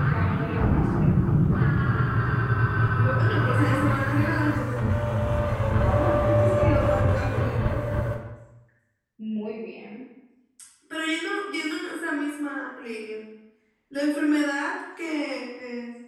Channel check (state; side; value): identical; both; correlation 1.00